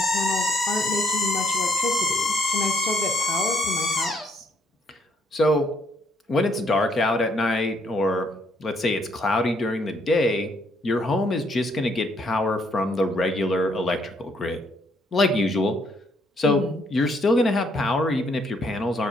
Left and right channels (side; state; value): both; normal; correlation 0.70